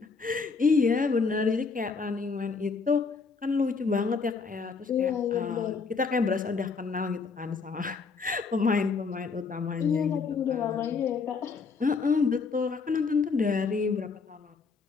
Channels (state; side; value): quieter; right; 4.9 dB